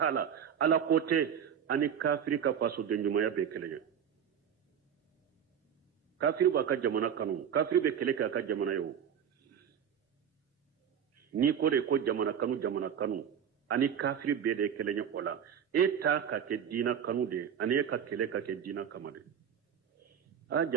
ala kote ani kafiri ka façon de nyumana be kele kafiri ba ka jamana kanu kafiri be kele ka jamana yo ni ko de ko jamana kanu ani kafiri be de kele nya ola eta ka ke dina kanu de ani ka kele ka ke dina kamade a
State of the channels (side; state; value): left; quieter; 8.4 dB